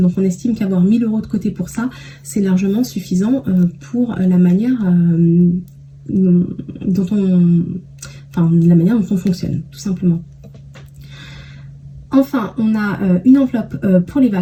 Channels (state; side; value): identical; both; correlation 1.00